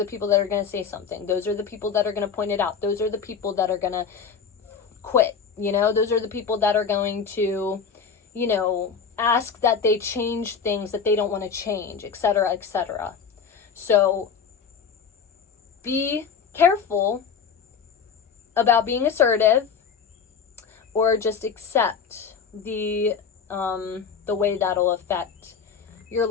people that are going to say something. Those are the people that are going to point it out. Those are the people that are going to quit, you know, those are the people that are going to, you know, ask that they change things that they don't want to change, etc., etc. So be careful about being assertive, or just accept the way that'll affect your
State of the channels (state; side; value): quieter; right; 6.3 dB